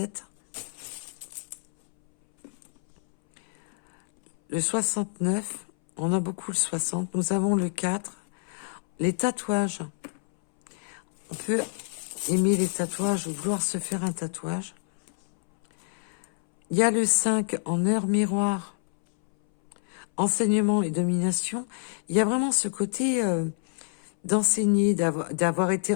Le 69, on a beaucoup le 60. Nous avons le 4. Les tatouages. On peut aimer les tatouages ou vouloir se faire un tatouage. Il y a le 5 en heure miroir. Enseignement et domination. Il y a vraiment ce côté d'enseigner, d'avoir été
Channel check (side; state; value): right; silent; 60 dB below the other